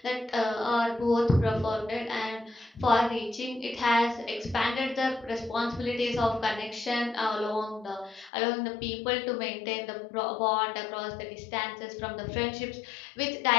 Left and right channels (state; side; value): drops out; right; at 8.3 s